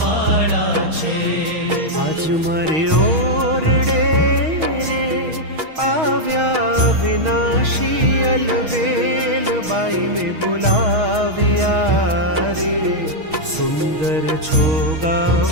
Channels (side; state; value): left; late; 6.3 ms